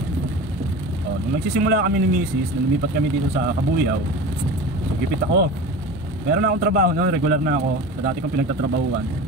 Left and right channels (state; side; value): normal; both; correlation 0.33